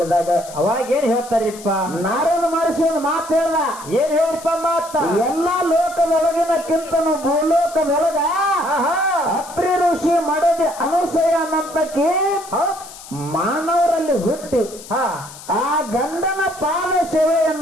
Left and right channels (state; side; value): noise; left; hiss, 17 dB below the sound